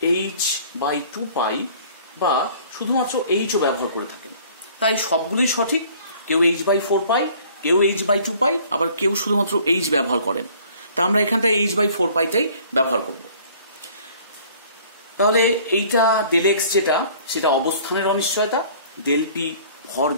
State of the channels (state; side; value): inverted; both; correlation -0.53